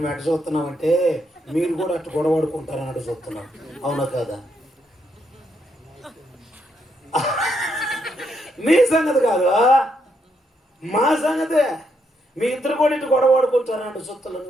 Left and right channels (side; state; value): both; normal; correlation 0.77